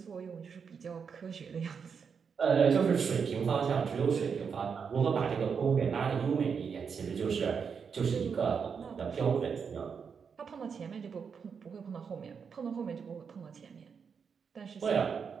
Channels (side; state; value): left; quieter; 6.3 dB